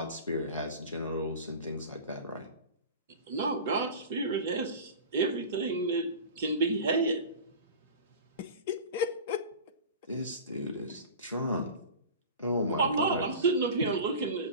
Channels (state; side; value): inverted; both; correlation -0.34